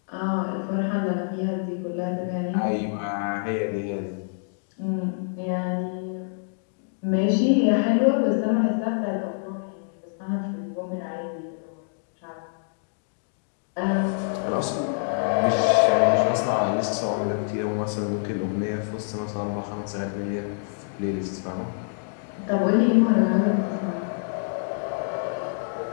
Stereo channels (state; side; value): silent; right; digital silence